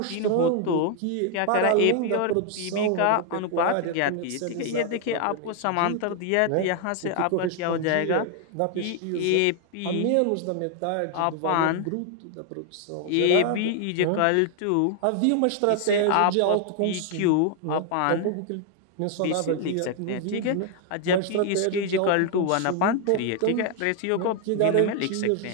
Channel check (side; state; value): both; different; correlation 0.00